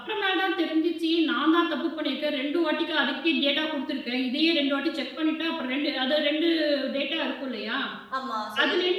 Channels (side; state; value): both; identical; correlation 1.00